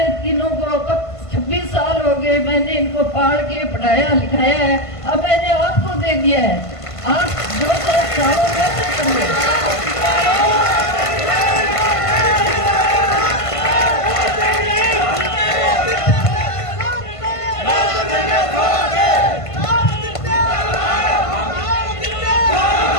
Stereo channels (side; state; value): right; late; 1.5 ms